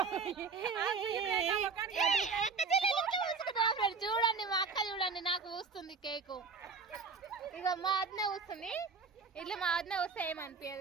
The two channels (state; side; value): quieter; left; 5.0 dB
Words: చూడండి మా అక్క చూడండి నాకు పూస్తుంది కేకు. ఇక మా వద్ద కూస్తుంది. ఇట్లా మా వద్ద వస్తే